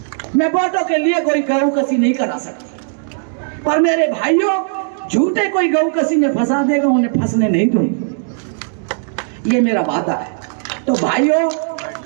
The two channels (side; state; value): left; silent; digital silence